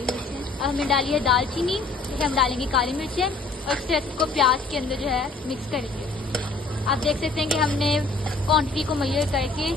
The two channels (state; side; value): quieter; right; 3.8 dB